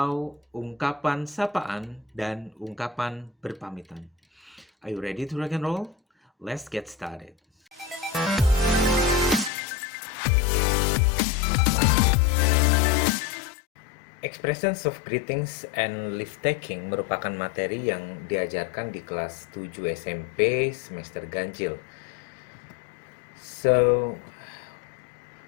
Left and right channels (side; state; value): right; drops out; at 9.5 s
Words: ungkapan sapaan dan ungkapan berpamitan. Are you ready to rock and roll? Let's get started. Expressions of greetings and leave taking merupakan materi yang diajarkan di kelas 7 SMP semester ganjil. So,